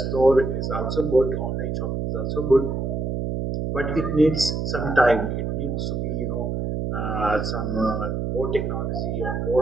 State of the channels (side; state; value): right; noise; hum, 2 dB below the sound